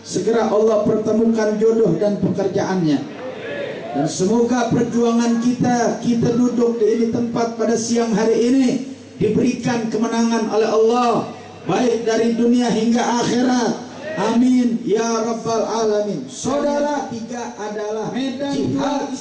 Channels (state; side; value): identical; both; correlation 1.00